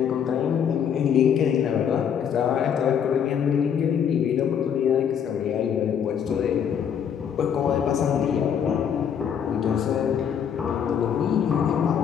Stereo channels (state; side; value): quieter; right; 8.1 dB